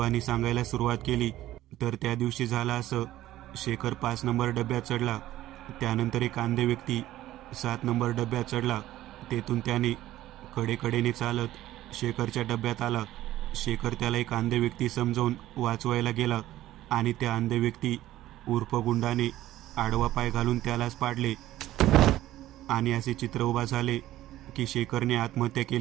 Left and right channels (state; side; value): quieter; left; 14.6 dB